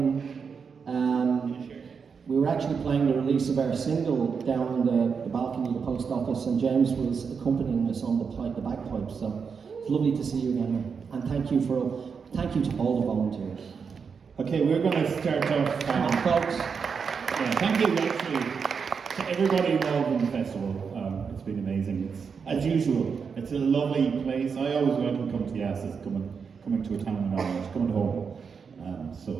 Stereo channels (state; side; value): quieter; left; 5.9 dB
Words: we were actually playing the release of our single down on the balcony of the post office, and James was accompanying us on the bagpipes. So it's lovely to see you again, man. And thank you to all the volunteers. Okay, we're going to start off. Folks. Yeah, thank you actually to everybody involved in the festival. It's been amazing. It's, as usual, it's a lovely place. I always welcome come to Yass as coming to a town in Ireland, coming home.